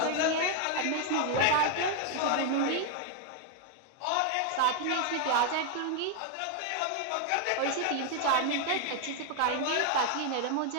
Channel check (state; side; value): different; both; correlation 0.00